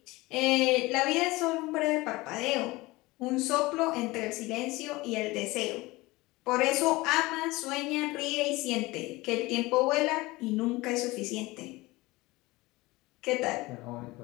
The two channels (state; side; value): quieter; right; 21.0 dB